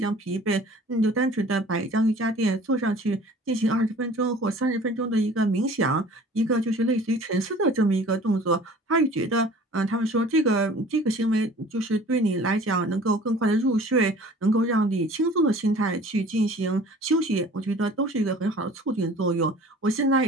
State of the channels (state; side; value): normal; both; correlation 0.47